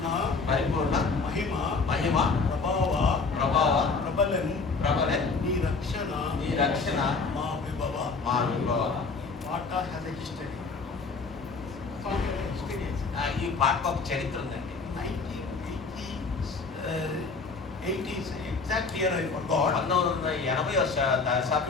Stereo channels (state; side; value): quieter; right; 4.4 dB